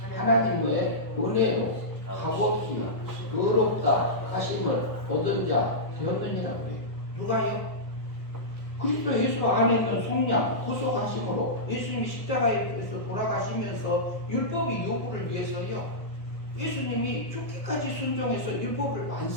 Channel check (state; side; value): late; right; 1.4 ms